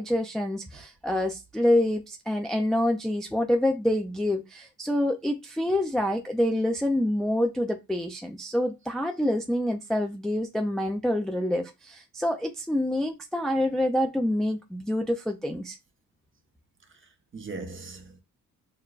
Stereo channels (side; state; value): both; normal; correlation 0.90